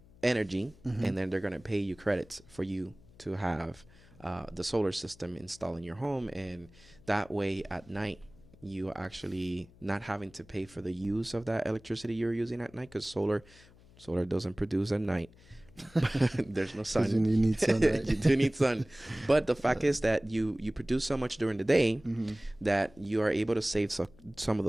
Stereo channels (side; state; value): left; noise; hum, 25 dB below the sound